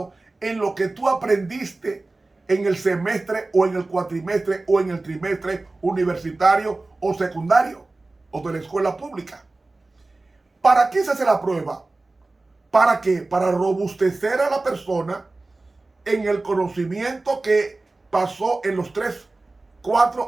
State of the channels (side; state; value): left; quieter; 3.2 dB